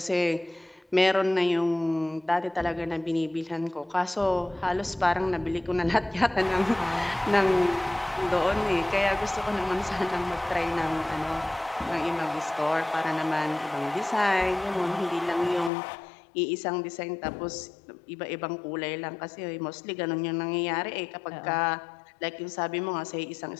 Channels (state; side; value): drops out; right; at 15.7 s